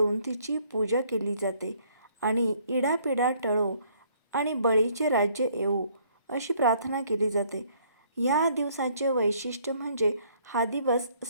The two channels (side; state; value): both; inverted; correlation -0.63